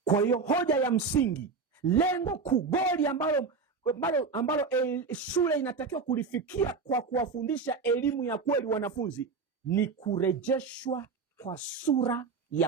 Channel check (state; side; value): quieter; left; 4.8 dB